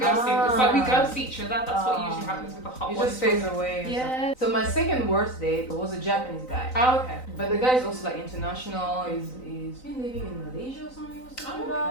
It's like we ghost each other. That's what usually happens with the hot You ones. just phase away. or Yeah. something. So my second worst date was a Japanese guy. Oh, okay. But the guy is also like international. He's been living in Malaysia or something. He was talking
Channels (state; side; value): late; right; 3.9 ms